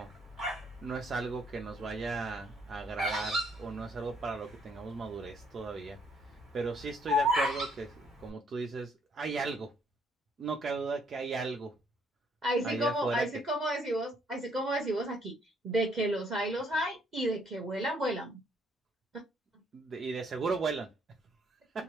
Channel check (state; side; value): normal; both; correlation 0.68